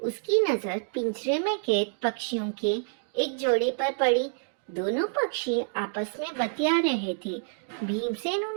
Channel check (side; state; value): left; silent; digital silence